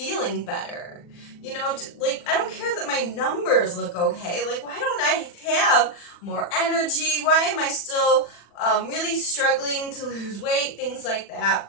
better? You know, like, I don't care that my numbers look okay. Like, why don't I have more energy? Why am I still really struggling to lose weight? Things like that.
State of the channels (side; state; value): right; late; 40 ms